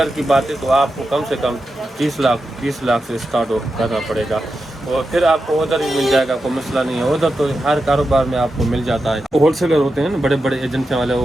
की बात है तो आपको कम से कम 20 लाख से स्टार्ट करना पड़ेगा और फिर आपको उधर ही मिल जाएगा, कोई मसला नहीं है। उधर तो हर कारोबार में आपको मिल जाता है। होलसेलर होते हैं ना बड़े बड़े एजेंसी वाले,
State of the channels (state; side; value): normal; both; correlation 0.89